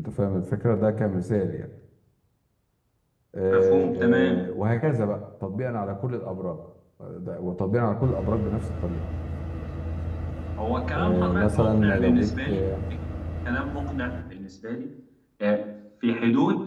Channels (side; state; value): both; identical; correlation 1.00